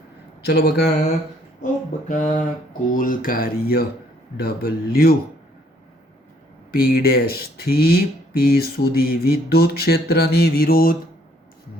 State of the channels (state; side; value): normal; both; correlation 0.65